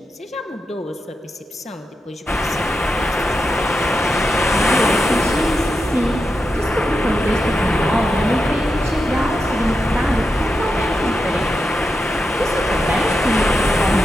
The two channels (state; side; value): normal; both; correlation 0.87